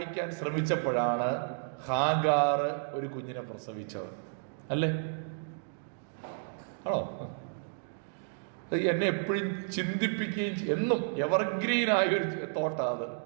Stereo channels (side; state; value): left; silent; digital silence